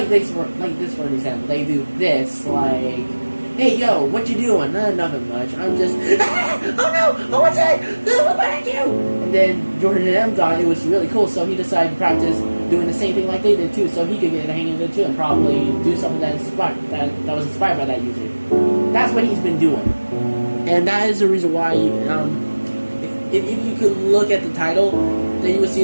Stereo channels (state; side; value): inverted; both; correlation -1.00